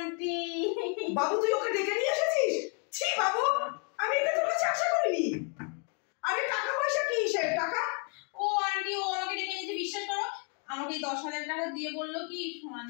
বাবু তুই ওকে ডেকে নিয়ে এসেছিস? ছি বাবু, আমি এটা তোর কাছে আশা করিনি। আরে টাকা পয়সা কি সে টাকা? ও আন্টি ও আমাকে ডেকে নিয়েছে, বিশ্বাস করো আমাকে 10,000 টাকা দিয়ে বললো কি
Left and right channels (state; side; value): quieter; right; 37.0 dB